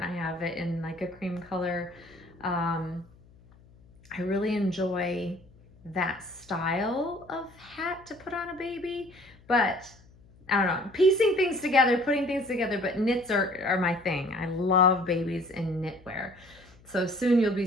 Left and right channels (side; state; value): left; noise; hum, 26 dB below the sound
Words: I have it in like a cream color. I really enjoy that style of hat to put on a baby, but I don't know, piecing things together, putting things together, but knits are my thing. I love babies in knitwear. So soon you'll be